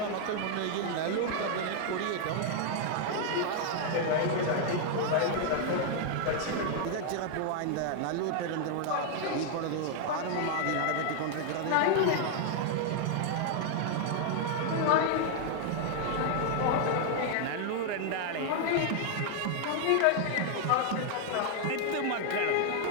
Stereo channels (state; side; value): different; both; correlation 0.00